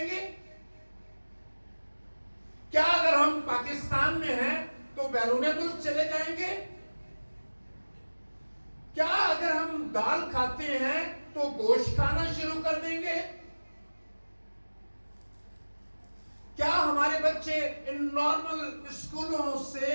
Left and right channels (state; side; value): inverted; both; correlation -1.00